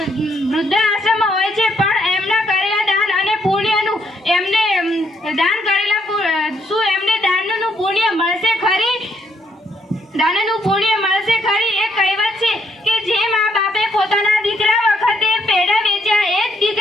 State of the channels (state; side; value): normal; both; correlation 0.73